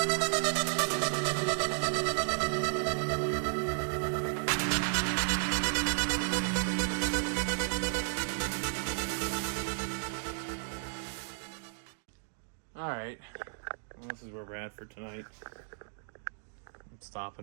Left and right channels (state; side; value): silent; left; 56 dB below the other